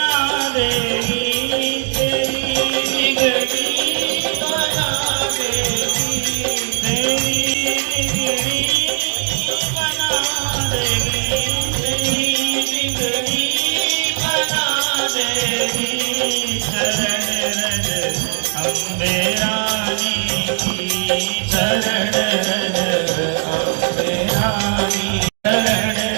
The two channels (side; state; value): left; silent; 56 dB below the other